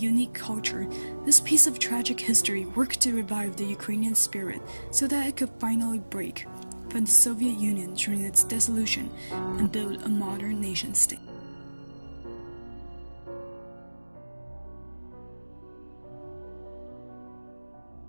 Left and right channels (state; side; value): inverted; both; correlation -1.00